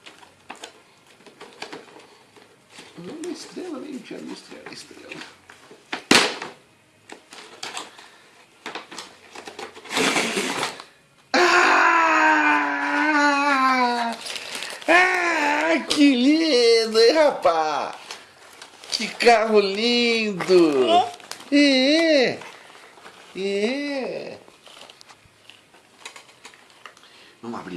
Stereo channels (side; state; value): both; identical; correlation 1.00